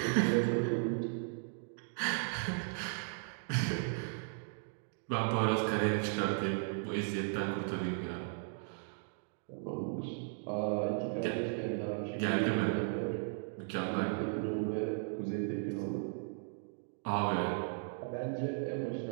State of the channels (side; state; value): left; silent; 54 dB below the other